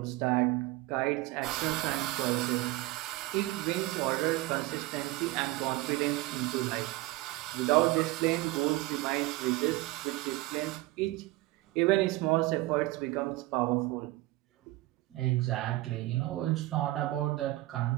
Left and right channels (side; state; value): left; quieter; 19.0 dB